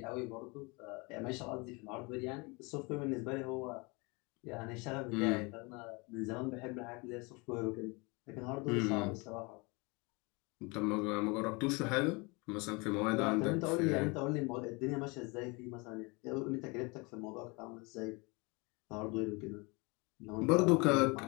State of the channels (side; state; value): right; quieter; 28.1 dB